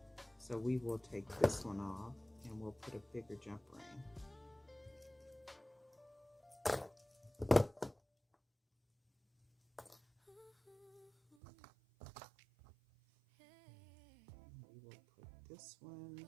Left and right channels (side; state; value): left; drops out; at 11.4 s